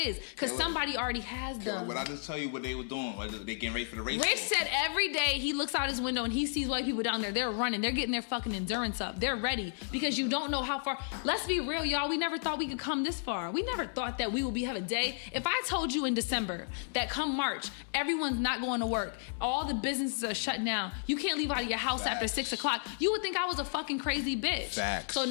Because somebody already has them. But I just tell you what they were doing. They getting ready for the race. Rich said every day he looks out his window and he sees white people down there. They're running. They're getting their fucking endurance up. They're ready because you don't know how far. Let's be real, y'all. We never thought we could come this far. We never thought that we will have a day. If I told you in December that come March, everyone's not going to work, all the businesses are shut down, you can't leave out of your house after 6 o'clock, you would think I was a fucking crazy bitch. Facts. So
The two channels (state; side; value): silent; right; 56 dB below the other